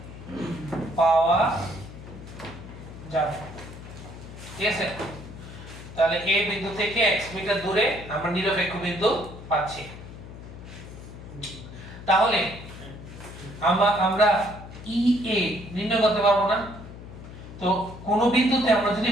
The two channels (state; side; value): noise; left; hum, 14 dB below the sound